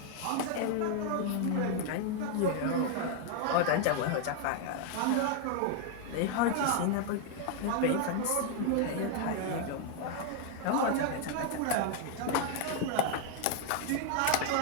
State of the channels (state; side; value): different; both; correlation 0.00